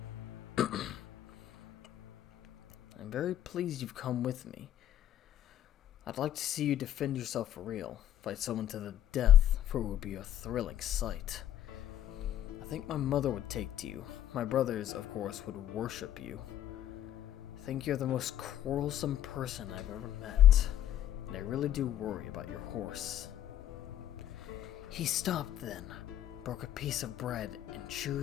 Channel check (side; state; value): right; quieter; 11.8 dB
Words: I'm very pleased you've come with me. I'd like to see you defend yourself for real, fight someone to the death, for it would be a thrilling sight. I think my mother would take to you. My brothers, of course, would worship you. I think you're the most quarrelsome person I've ever met, and I really do worry about your horse. He stopped then, broke a piece of bread, and